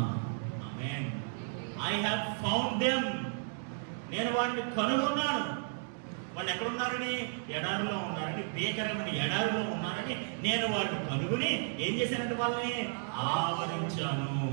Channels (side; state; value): left; silent; digital silence